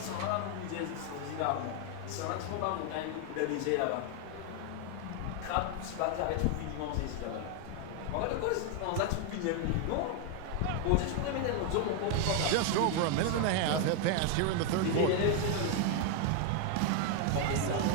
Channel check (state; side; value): different; both; correlation 0.01